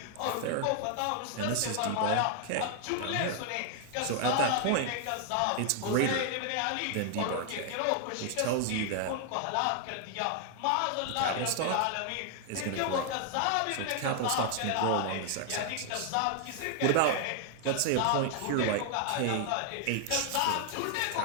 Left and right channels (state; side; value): different; both; correlation 0.00